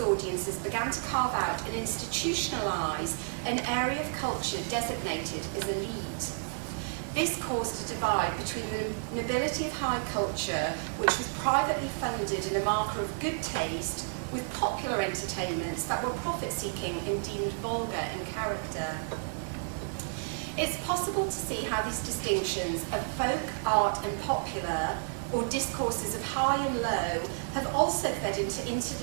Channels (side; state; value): left; silent; digital silence